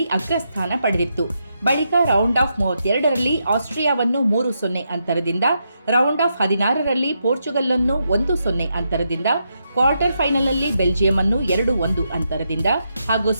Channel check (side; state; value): both; inverted; correlation -0.82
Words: ಅಗ್ರಸ್ಥಾನ ಪಡೆದಿತ್ತು. ಬಳಿಕ ರೌಂಡ್ ಆಫ್ 32ರಲ್ಲಿ ಆಸ್ಟ್ರಿಯಾವನ್ನು 3-0 ಅಂತರದಿಂದ, ರೌಂಡ್ ಆಫ್ 16ರಲ್ಲಿ ಪೋರ್ಚುಗಲ್ ಅನ್ನು 1-0 ಅಂತರದಿಂದ, ಕ್ವಾರ್ಟರ್ ಫೈನಲ್ನಲ್ಲಿ ಬೆಲ್ಜಿಯಂ ಅನ್ನು 2-1 ಅಂತರದಿಂದ ಹಾಗೂ